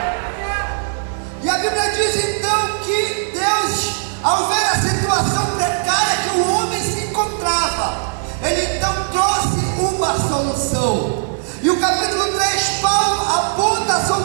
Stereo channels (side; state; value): left; silent; 61 dB below the other